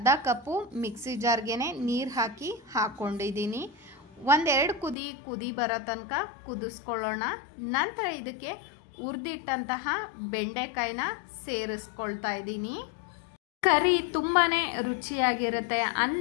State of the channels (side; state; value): right; drops out; at 5.0 s